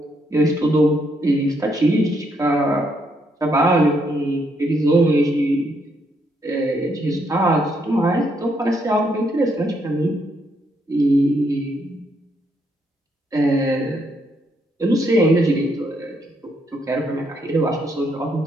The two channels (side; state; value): both; normal; correlation 0.75